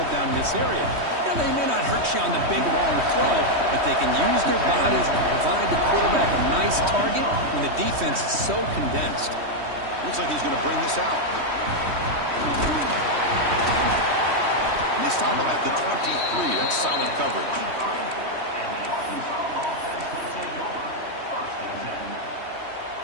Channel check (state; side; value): late; left; 3.2 ms